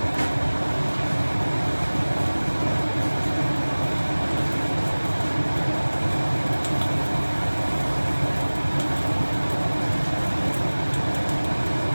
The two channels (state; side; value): inverted; both; correlation -1.00